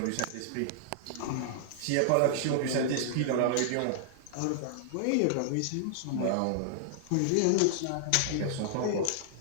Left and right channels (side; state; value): both; different; correlation -0.01